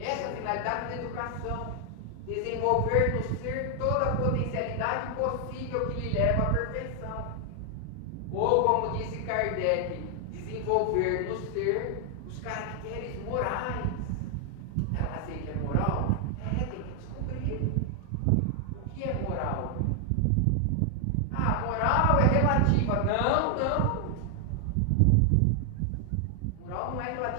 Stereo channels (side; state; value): both; different; correlation 0.00